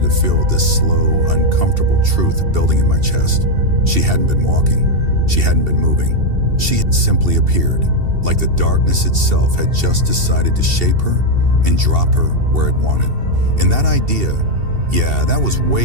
to feel this slow, uncomfortable truth building in my chest. She hadn't been walking. She hadn't been moving. She had simply appeared, like the darkness itself had just decided to shape her and drop her where it wanted. And that idea, yeah, that was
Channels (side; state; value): left; late; 2.7 ms